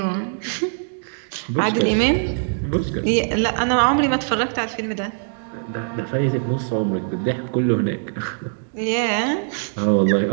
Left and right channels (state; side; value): silent; left; digital silence